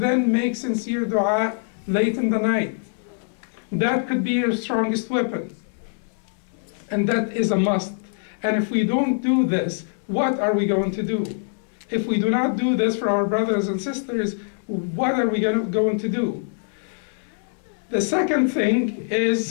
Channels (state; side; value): silent; right; digital silence